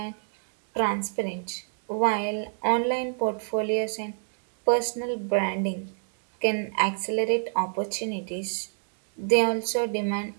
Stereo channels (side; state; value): left; silent; digital silence